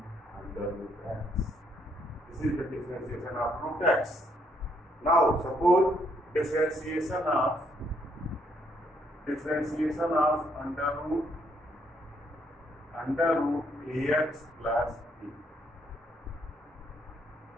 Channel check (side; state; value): both; normal; correlation 0.72